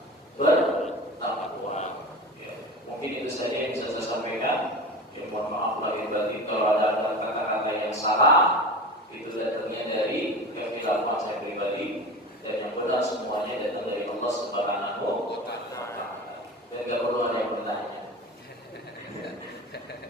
bertakwa. Ya, mungkin itu saja yang bisa saya sampaikan. Ya, mohon maaf lahir batin kalau ada kata-kata yang salah, itu datangnya dari kekhilafan saya pribadi, dan yang benar semuanya datang dari Allah Subhanahu wa Ta'ala. Dan tidak perlu ada yang bertanya.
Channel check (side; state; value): both; normal; correlation 0.31